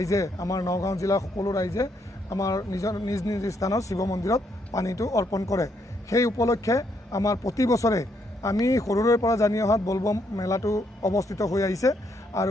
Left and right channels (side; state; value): both; normal; correlation 0.74